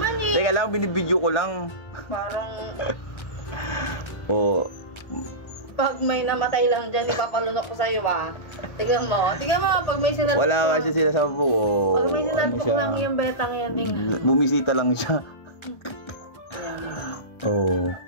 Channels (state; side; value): late; right; 1.4 ms